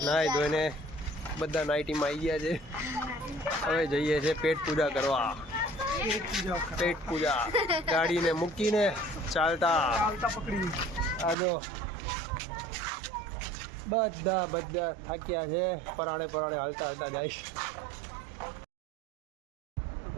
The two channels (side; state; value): left; drops out; at 11.4 s